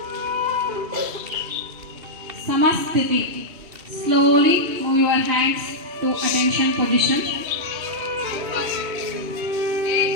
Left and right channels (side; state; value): left; late; 2.7 ms